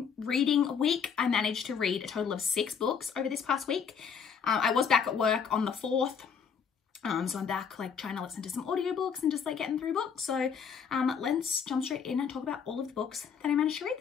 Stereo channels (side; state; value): right; quieter; 6.8 dB